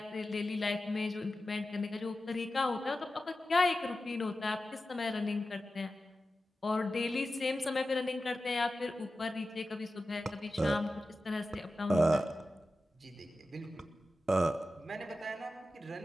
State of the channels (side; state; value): both; normal; correlation 0.93